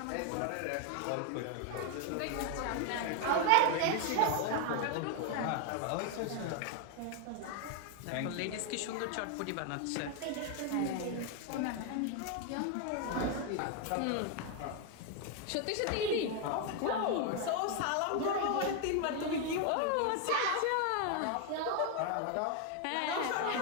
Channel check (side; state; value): both; different; correlation 0.01